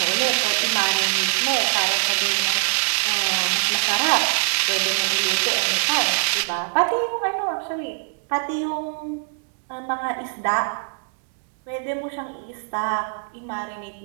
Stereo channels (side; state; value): left; silent; digital silence